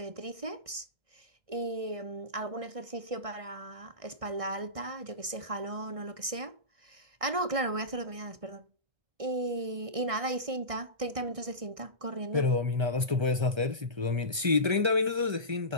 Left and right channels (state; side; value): late; left; 1.6 ms